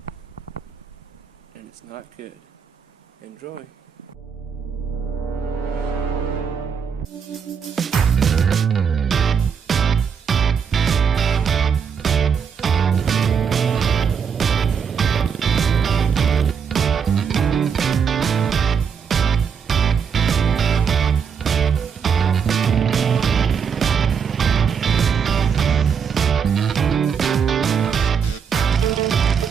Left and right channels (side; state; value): left; quieter; 6.8 dB